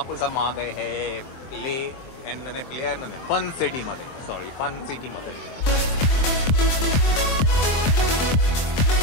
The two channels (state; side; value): late; right; 23 ms